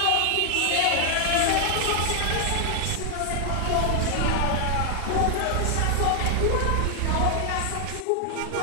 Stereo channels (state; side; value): different; both; correlation 0.00